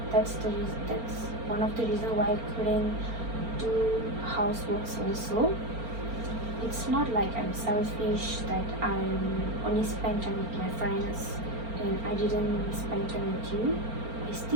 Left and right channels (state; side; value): late; left; 4.4 ms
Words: That's one of the reasons why I couldn't do houseworks also. It's not like I'm selfish that I'm only spend time with my friends and I didn't spend time with you. I